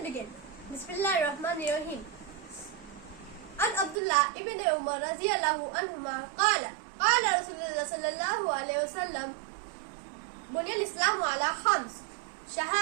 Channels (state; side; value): drops out; left; at 4.0 s